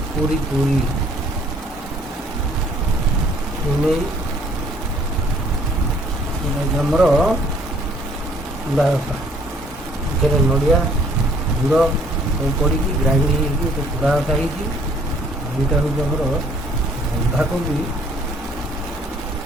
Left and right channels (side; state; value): both; normal; correlation 0.60